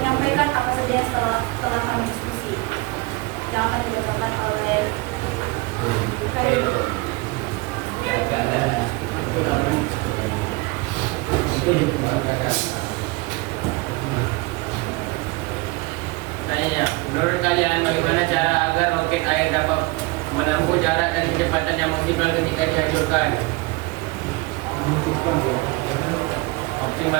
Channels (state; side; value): quieter; left; 24.0 dB